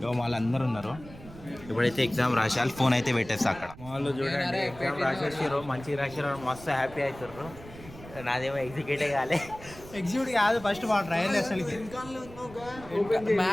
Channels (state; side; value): noise; right; rumble, 17 dB below the sound